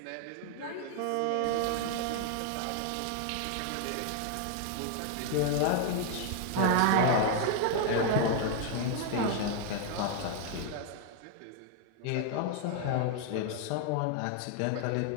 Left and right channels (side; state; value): both; different; correlation 0.00